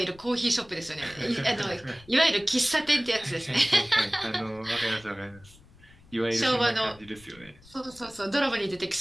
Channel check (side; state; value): left; noise; rumble, 24 dB below the sound